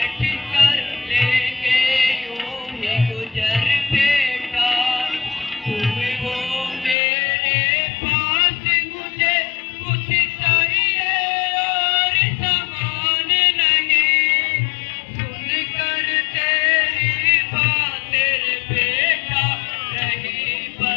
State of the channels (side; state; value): right; drops out; at 7.0 s